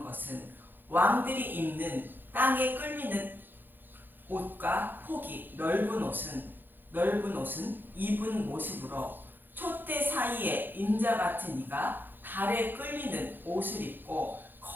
것은 왕들이 입는 땅에 끌리는 옷과 폭이 넓은 옷은 입은 모습으로 촛대 사이에 인자 같은 이가 달에 끌리는 옷을 입고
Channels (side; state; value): left; late; 0.093 ms